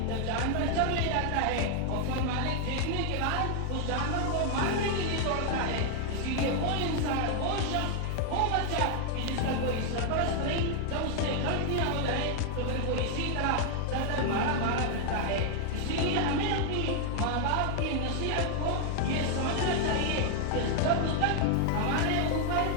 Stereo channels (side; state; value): both; different; correlation 0.00